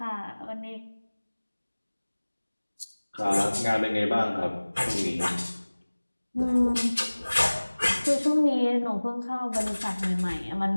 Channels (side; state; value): both; inverted; correlation -1.00